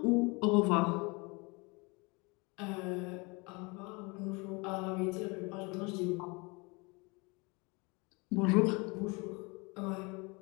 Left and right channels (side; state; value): right; quieter; 27.8 dB